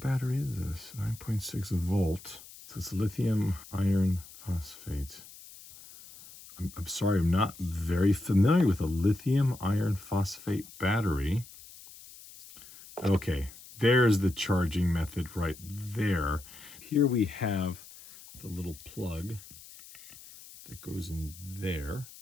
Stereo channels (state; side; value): noise; left; hiss, 18 dB below the sound